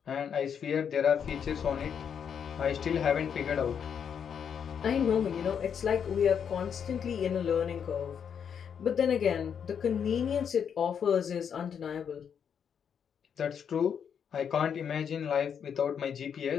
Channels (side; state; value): right; quieter; 7.6 dB